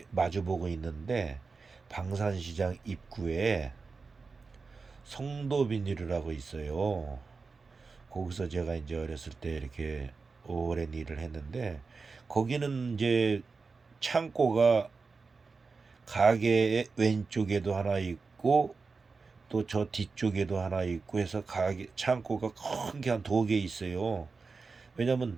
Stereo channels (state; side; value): quieter; left; 4.5 dB